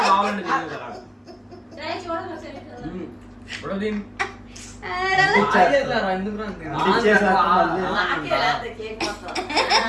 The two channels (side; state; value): both; identical; correlation 1.00